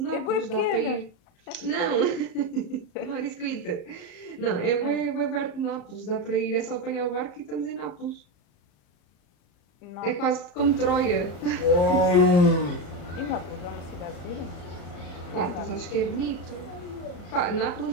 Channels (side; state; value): right; late; 34 ms